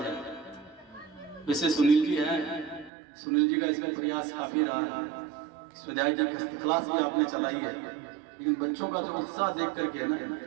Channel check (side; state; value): left; drops out; at 2.9 s